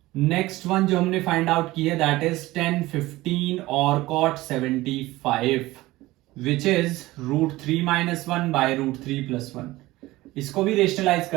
नेक्स्ट वन जो हमने फाइंड आउट की है दैट इज 10, 15 और cot 75, विच इज √3 - 1 by √3 + 1। इसको भी रेशनलाइज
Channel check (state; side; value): quieter; left; 18.5 dB